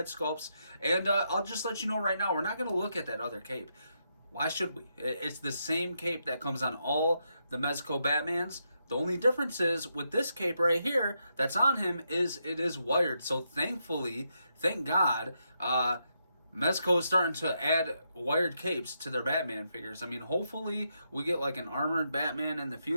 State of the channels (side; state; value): both; inverted; correlation -0.81